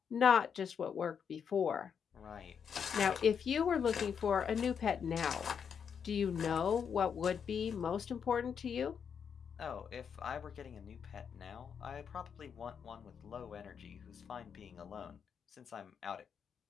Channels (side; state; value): right; quieter; 7.1 dB